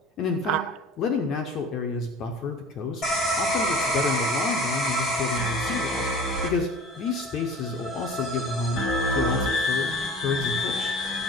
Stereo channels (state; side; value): normal; both; correlation 0.41